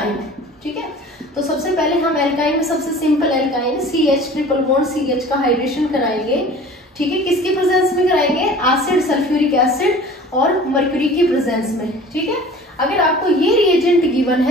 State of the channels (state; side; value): normal; both; correlation 0.44